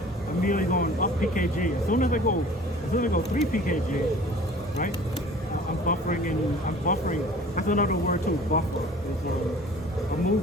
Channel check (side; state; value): both; normal; correlation 0.46